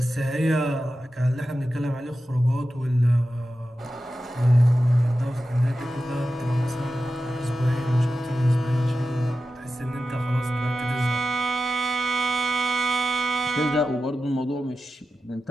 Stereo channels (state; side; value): normal; both; correlation 0.93